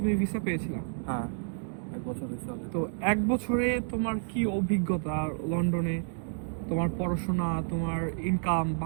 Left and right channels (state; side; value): silent; left; digital silence